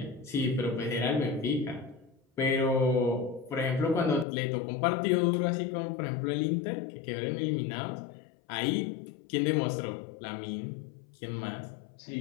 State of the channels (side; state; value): right; drops out; at 4.2 s